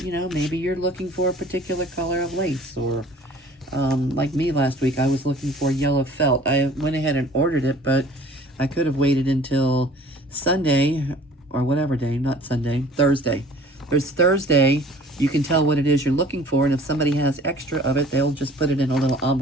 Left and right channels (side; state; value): both; normal; correlation 0.50